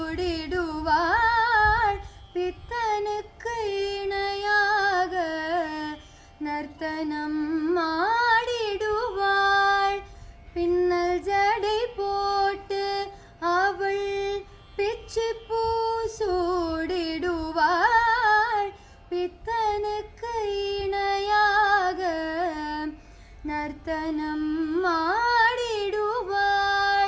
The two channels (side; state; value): both; identical; correlation 1.00